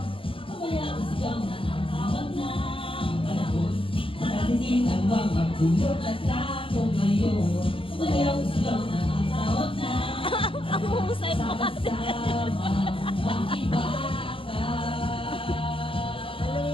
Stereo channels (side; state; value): right; late; 0.26 ms